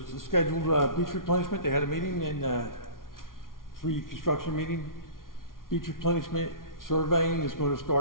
a scheduled beach replenishment. They had a meeting and free construction meeting. Beach replenishment surveying is going to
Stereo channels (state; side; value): late; right; 0.91 ms